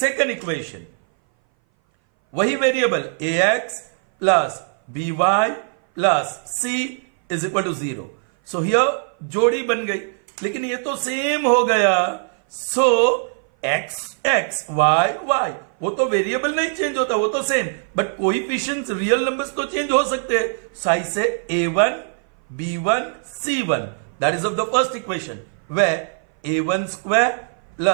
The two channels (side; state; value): left; silent; 59 dB below the other